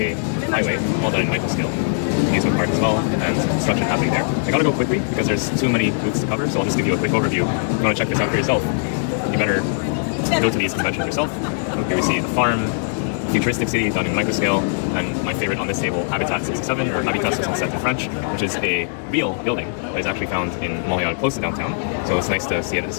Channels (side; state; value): right; silent; digital silence